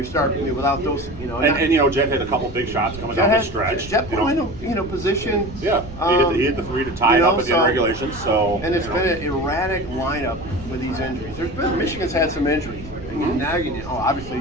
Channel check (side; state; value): right; noise; rumble, 15 dB below the sound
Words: starting without those, And Jet hit a couple big shots coming down the stretch. Jet put him in position. Yeah, he hit the 3 to tie it up at the end of regulation. So and it's been an erratic lineup with these injuries. Michigan's had some injuries. Obviously